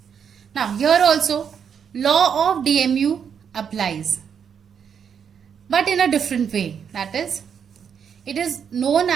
Now here also law of DMU applies, but in a different way. That is, it is known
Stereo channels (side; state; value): left; quieter; 7.5 dB